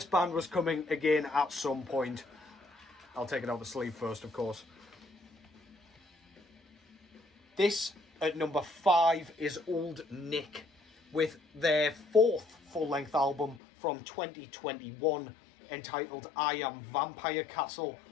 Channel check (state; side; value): drops out; right; at 13.6 s